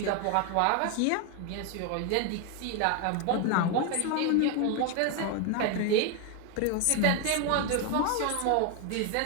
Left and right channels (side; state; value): both; different; correlation 0.01